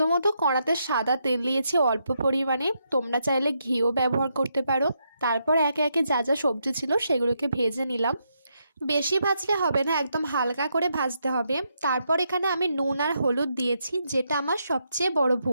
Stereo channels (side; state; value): both; inverted; correlation -0.80